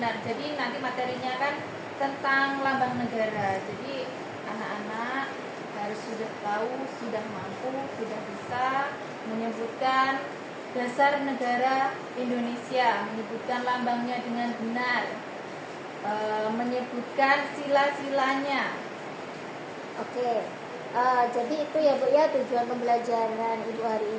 Jadi nanti materinya kan tentang lambang negara. Jadi anak-anak harus sudah tahu, sudah mampu, sudah bisa menyebutkan dasar negara Indonesia, menyebutkan lambangnya dengan benar, menyebutkan sila-silanya. Oke, jadi itu ya Bu ya tujuan pembelajaran Ibu hari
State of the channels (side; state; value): both; identical; correlation 1.00